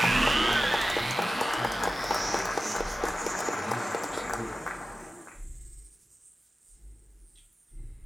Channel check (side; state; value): both; normal; correlation 0.95